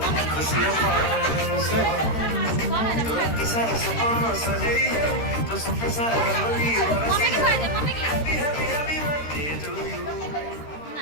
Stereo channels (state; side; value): late; right; 13 ms